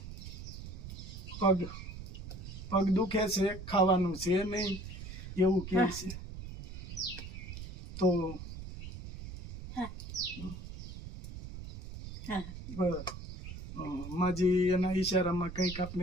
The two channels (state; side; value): noise; right; rumble, 10 dB below the sound